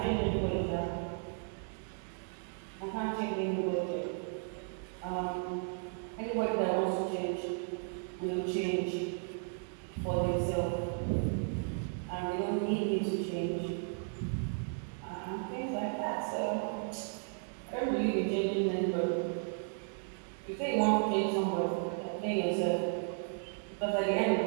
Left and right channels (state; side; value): silent; left; 55 dB below the other